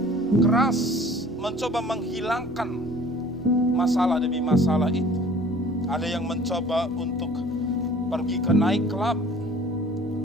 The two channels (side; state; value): left; noise; hum, 24 dB below the sound